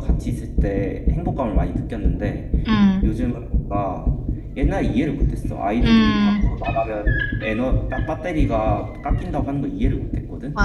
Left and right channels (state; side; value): identical; both; correlation 1.00